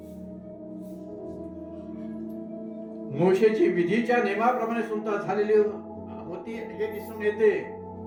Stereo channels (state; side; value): identical; both; correlation 1.00